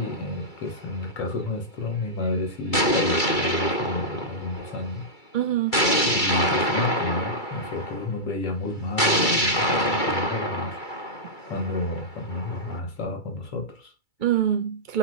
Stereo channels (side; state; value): right; late; 2.3 ms